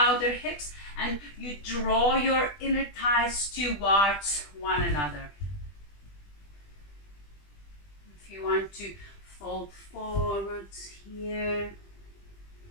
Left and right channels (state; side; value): late; right; 20 ms